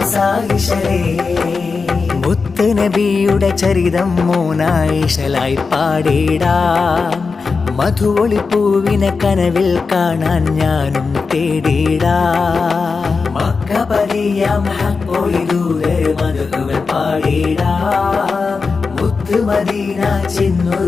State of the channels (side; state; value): right; quieter; 4.7 dB